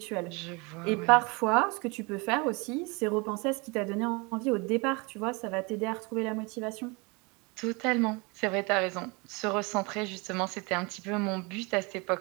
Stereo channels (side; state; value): left; quieter; 28.3 dB